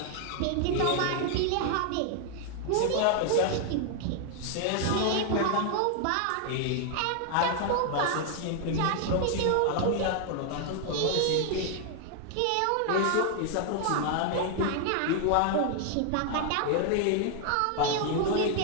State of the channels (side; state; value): both; different; correlation 0.00